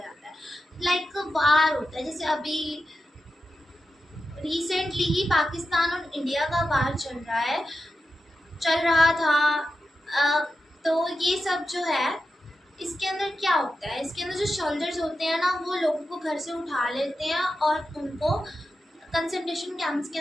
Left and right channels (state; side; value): normal; both; correlation 0.90